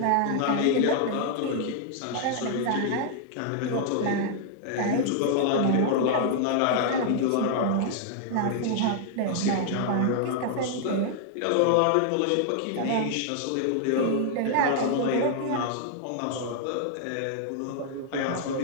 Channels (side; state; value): both; different; correlation -0.01